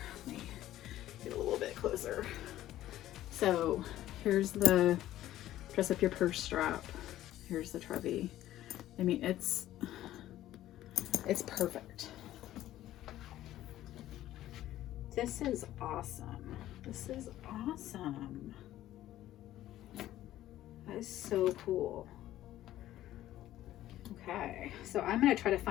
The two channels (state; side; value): quieter; right; 13.8 dB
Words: let me get a little bit closer. So here's the Dress Up Your Purse strap. Here's the Trevi. I mean, it's perfect. This is awesome. This is awesome. That is so cool. Okay, so I'm gonna try to